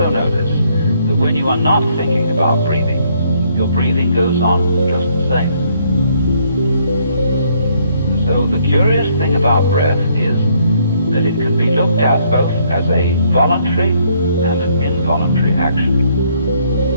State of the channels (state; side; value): inverted; both; correlation -0.68